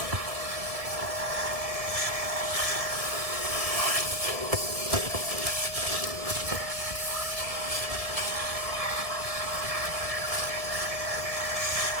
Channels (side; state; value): left; late; 1.6 ms